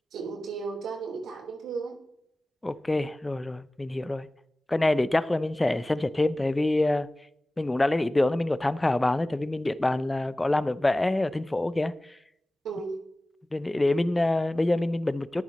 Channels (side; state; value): both; normal; correlation 0.97